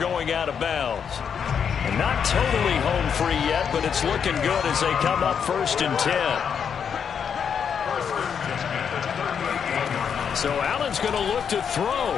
out of bounds. And not totally home free yet, but it's looking good as they come up 1st and 10. So Allen's going to look to throw.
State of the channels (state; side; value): quieter; right; 7.3 dB